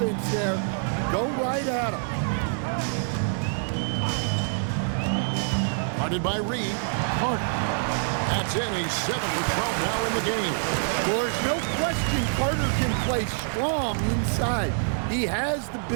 there. Go right at him. Guarded by Reed. Carter. That's in. He's 7 for 12 now in the game. Well, there's no question Carter can play strong inside. He has the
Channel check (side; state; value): left; silent; digital silence